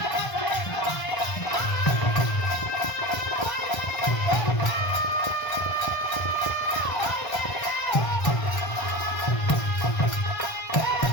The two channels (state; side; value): late; right; 1.5 ms